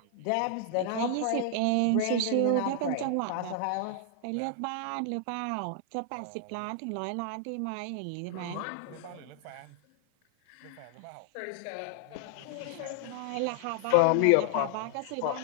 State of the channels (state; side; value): different; both; correlation 0.00